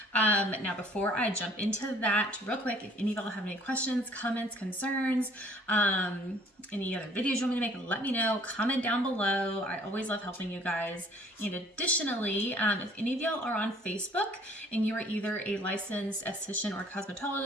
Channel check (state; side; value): normal; both; correlation 0.57